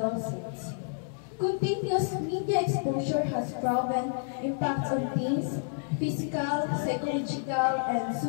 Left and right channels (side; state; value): right; silent; digital silence